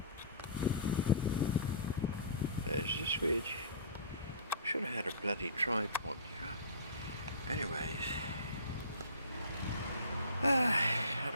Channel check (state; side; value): inverted; both; correlation -0.39